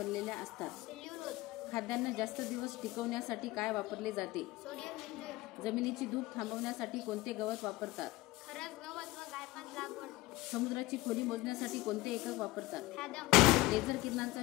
असतात? सेल्युलोज. खाद्यान्न जास्त दिवस टिकवण्यासाठी काय वापरले जाते? सोडियम बेंझोएट. जमिनीची धूप थांबवण्यासाठी कोणते गवत वापरतात? खरस गवत व गायपात लागवड. समुद्राची खोली मोजण्यासाठी कोणते एकक वापरतात? फॅदम. लेझर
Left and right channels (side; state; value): right; quieter; 19.2 dB